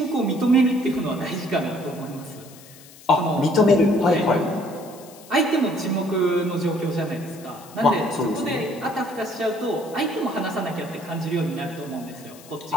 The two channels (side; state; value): left; noise; hiss, 21 dB below the sound